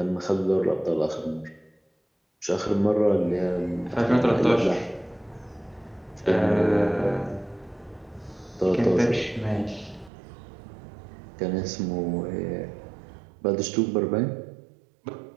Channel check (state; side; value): drops out; left; at 10.1 s